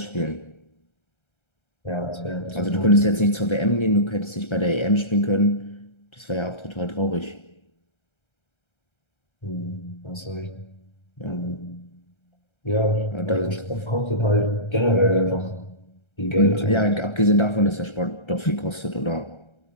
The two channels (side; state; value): right; late; 1.3 ms